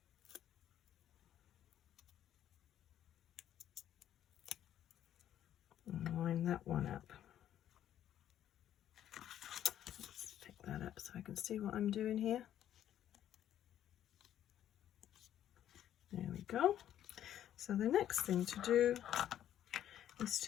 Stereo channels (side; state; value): right; quieter; 11.1 dB